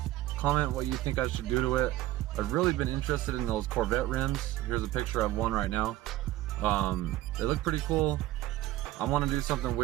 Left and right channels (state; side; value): quieter; left; 15.4 dB